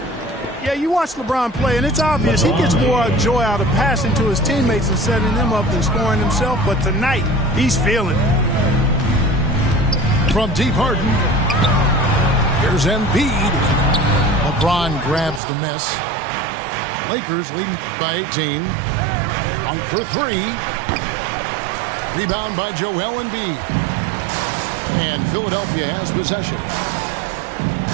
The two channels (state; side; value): drops out; left; at 15.4 s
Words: Yeah, you watch LeBron play, and it's obvious he gets more joy out of passing to his teammates and setting them up than scoring himself. But tonight, he's feeling it. From deep Harden. Here's Embiid. LeBron grabs the miss. Lakers leading by 18. One for three. Rebound by Joel Embiid. And Philadelphia has possession.